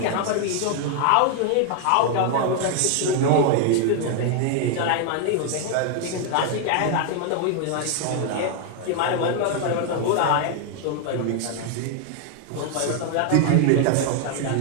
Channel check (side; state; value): both; different; correlation 0.00